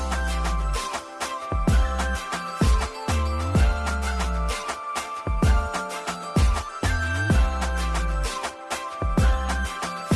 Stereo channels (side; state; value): both; identical; correlation 1.00